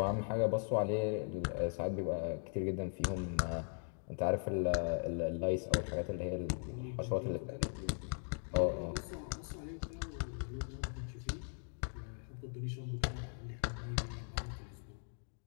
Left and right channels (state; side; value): silent; right; 52 dB below the other